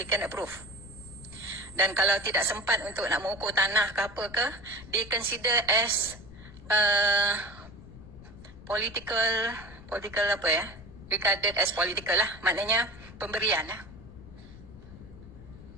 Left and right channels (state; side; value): noise; left; rumble, 17 dB below the sound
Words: approve. Dan kalau tidak sempat untuk nak mengukur tanah ke apa ke, dia consider as political apa ya, regarded as political lah, maknanya pemberian lah.